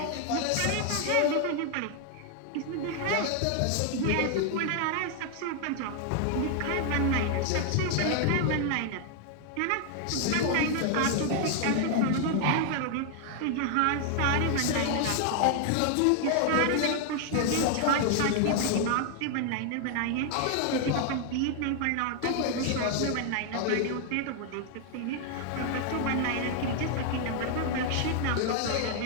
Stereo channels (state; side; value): different; both; correlation 0.00